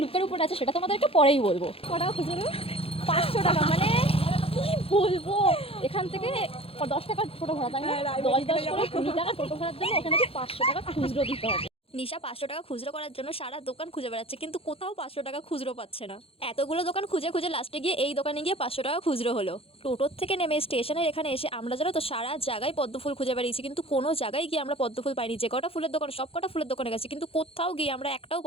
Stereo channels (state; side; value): late; right; 0.27 ms